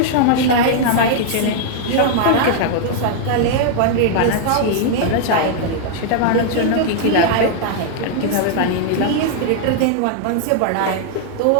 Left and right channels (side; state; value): both; different; correlation 0.00